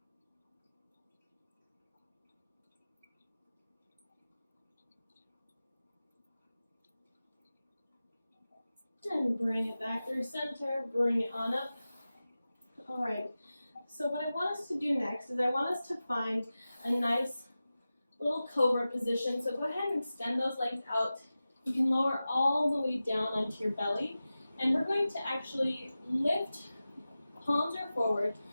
And bring it back through center, bring it on up. All right, so what I want us to do next is I want us to find a nice little cobra position. So go ahead and extend those legs out. You can lower all the way down onto your belly. And we're going to actually lift, palms are forward.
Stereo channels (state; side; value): inverted; both; correlation -0.95